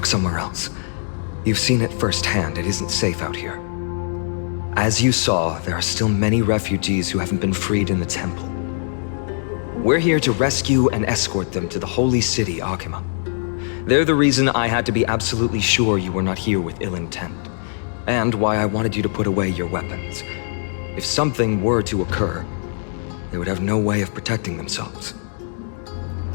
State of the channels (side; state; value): right; silent; digital silence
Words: somewhere else. You've seen it firsthand. It isn't safe out here. As you saw, there are still many refugees who haven't been freed in the temple. We're here to rescue and escort them to the holy city, Akima. They're the reason I had to be absolutely sure you were not here with ill intent, and why I wanted you to put away your weapons. If something were to occur, they would have no way of protecting themselves.